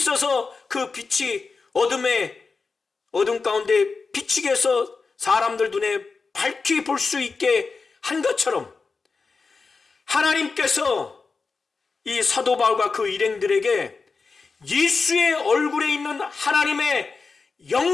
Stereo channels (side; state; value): right; quieter; 4.5 dB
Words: 그 빛이 어둠 가운데 비치게 해서 사람들 눈에 밝히 볼 수 있게 한 것처럼, 하나님께서 이 사도 바울과 그 일행들에게 예수의 얼굴에 있는 하나님의